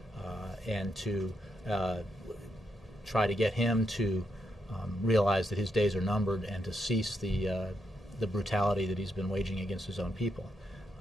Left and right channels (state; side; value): normal; both; correlation 0.81